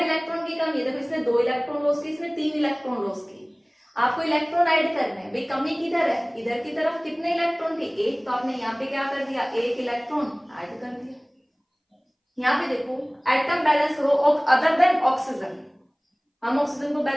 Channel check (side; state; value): both; identical; correlation 1.00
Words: की कमी है, देखो इसमें 2 इलेक्ट्रॉन लॉस की, इसमें 3 इलेक्ट्रॉन लॉस की। आपको इलेक्ट्रॉन ऐड करने हैं, भाई कमी किधर है, इधर की तरफ कितने इलेक्ट्रॉन थे, एक, तो आपने यहाँ पे क्या कर दिया, एक इलेक्ट्रॉन ऐड कर दिया। यहाँ पे देखो एटम बैलेंस करो, अदर देन ऑक्सीजन, हम ऑक्सीजन को